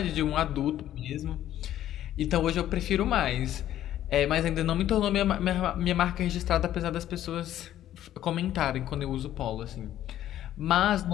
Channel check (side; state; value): right; quieter; 12.3 dB